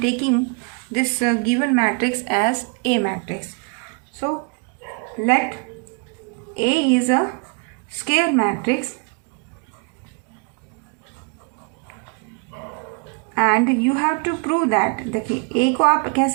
taking this given matrix as A matrix. So let A is a square matrix and you have to prove that. देखिए A को आप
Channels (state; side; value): quieter; left; 36.5 dB